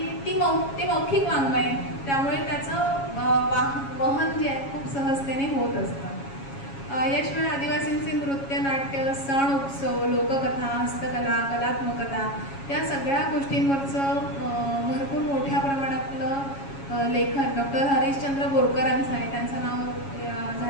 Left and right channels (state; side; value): late; right; 7.3 ms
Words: ते मौखिक वाङ्मय आहे, त्यामुळे त्याचं वहन जे आहे खूप सहजतेने होत असतं. याशिवाय आदिवासींचे नृत्य, नाट्य, सण, उत्सव, लोककथा, हस्तकला, कलात्मकता या सगळ्या गोष्टींवरचं भरपूर मोठ्या प्रमाणातलं लेखन डॉक्टर हरिश्चंद्र बोरकरांचं आहे. त्यांचं नाव